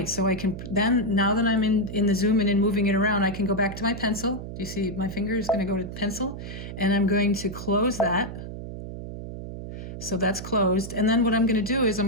so I can, then, now that I'm in the zoom in and moving it around, I can go back to my pencil. Do you see my finger is going to go to pencil? And I'm going to close that. So that's closed. And then what I'm going to do is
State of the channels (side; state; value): right; noise; hum, 9 dB below the sound